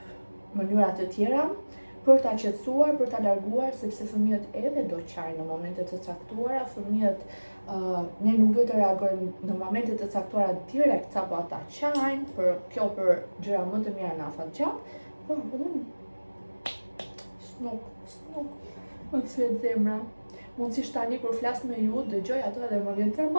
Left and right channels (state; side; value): inverted; both; correlation -1.00